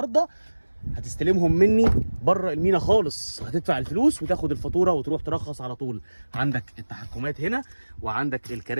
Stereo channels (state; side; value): inverted; both; correlation -1.00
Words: هتستلمهم مني بره المينا خالص. هتدفع الفلوس وتاخد الفاتوره وتروح ترخص على طول. عندك التحكمات هنا، وعندك